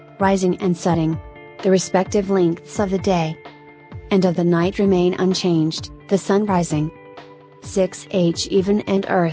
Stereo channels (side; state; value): both; identical; correlation 1.00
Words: rising and setting. The respective lengths of the day and of the night remain unchanged, the sun rising 6h even and